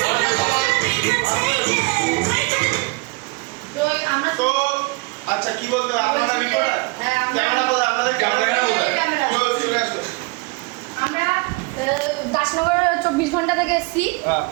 আচ্ছা কি বলতে আপনারা রিপোর্টার? হ্যাঁ, ক্যামেরা বলে আপনাদের ক্যামেরা চলে আসো। আমরা দাসনগর 24 ঘন্টা থেকে এসেছি।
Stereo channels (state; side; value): quieter; left; 27.9 dB